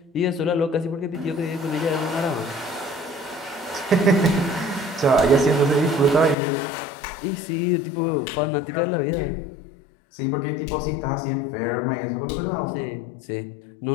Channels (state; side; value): drops out; right; at 6.4 s